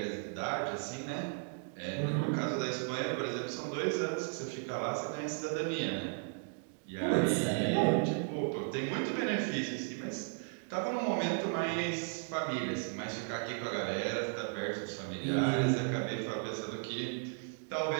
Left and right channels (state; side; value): silent; left; 54 dB below the other